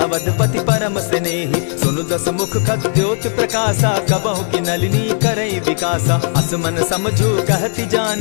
परम स्नेही। सुनु दस मुख खद्योत प्रकाशा, कबहु की नलिनी करई विकासा। असमन समझो कहती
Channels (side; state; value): right; silent; 65 dB below the other